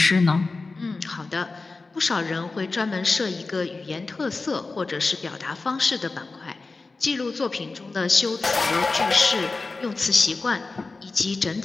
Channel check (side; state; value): right; quieter; 3.8 dB